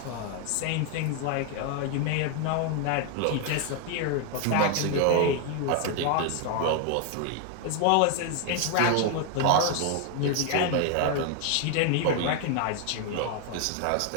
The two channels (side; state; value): both; different; correlation 0.01